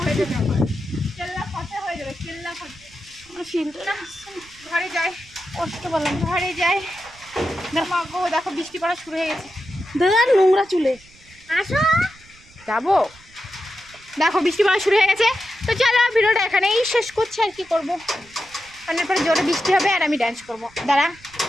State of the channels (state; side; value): noise; right; rumble, 26 dB below the sound